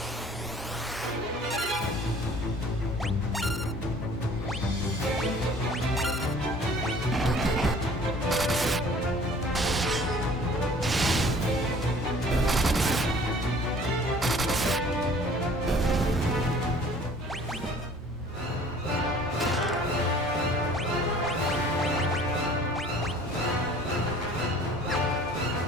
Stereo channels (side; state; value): both; normal; correlation 0.51